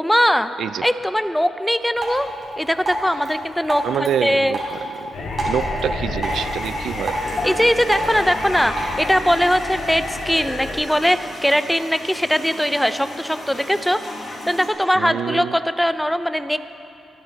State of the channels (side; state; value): both; normal; correlation 0.94